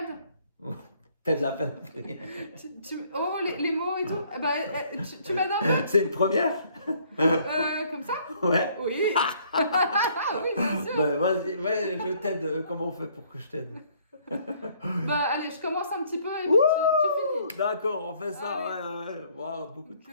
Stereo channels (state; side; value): inverted; both; correlation -0.62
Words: m'aides? T'as de la peine de prier. Oh, les mots et tout. Bah, tu m'aides un peu? C'est une première? Comme ça? Ouais. Oui. Oui, bien sûr. Vas-y, ouais, je t'aide. Comment on fait pour que je t'aide? Bah, allez, je commence un petit peu et puis tu finis. D'accord, on fait ça. Allez. Ouais. Wow, beaucoup de